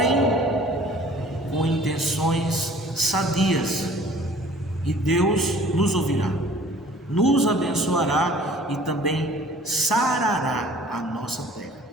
com intenções sadias e Deus nos ouvirá, nos abençoará e também sarará a nossa terra.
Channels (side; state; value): both; normal; correlation 0.51